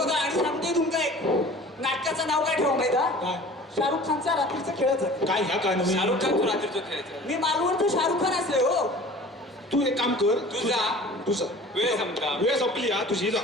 आणि सांगते तुमका एक नाटकाचं नाव काय ठेवा माहिती हा? काय? शाहरुख खानचा रात्रीचं खेळच आहे काय ह्या काय नाही शाहरुख खान तू रात्रीचं खेळायचं मी मालवणचं शाहरुख खान असले हो तू एक काम कर तू जा. तुझं वेळ संपला वेळ संपली हा तुझी जा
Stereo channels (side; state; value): both; normal; correlation 0.43